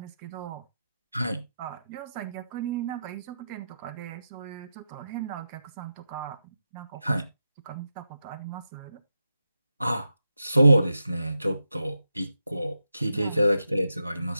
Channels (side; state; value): both; inverted; correlation -0.88